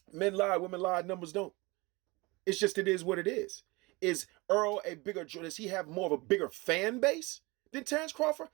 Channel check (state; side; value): quieter; left; 24.5 dB